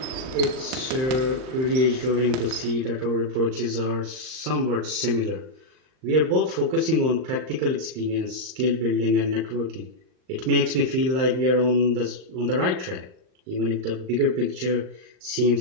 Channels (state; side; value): late; left; 38 ms